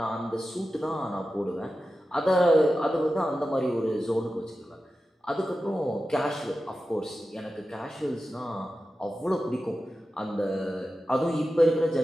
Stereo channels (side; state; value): both; normal; correlation 0.93